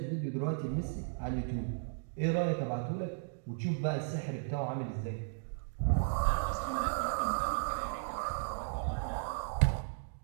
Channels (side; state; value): left; silent; digital silence